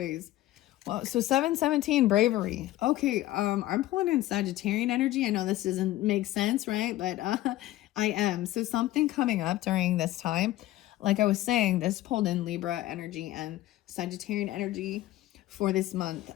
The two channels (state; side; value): quieter; right; 15.5 dB